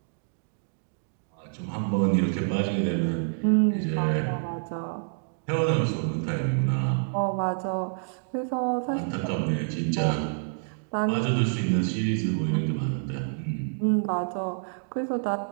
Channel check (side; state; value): left; silent; digital silence